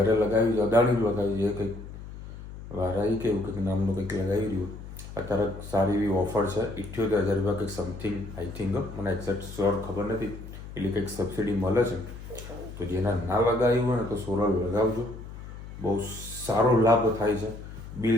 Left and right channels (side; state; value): left; noise; hum, 12 dB below the sound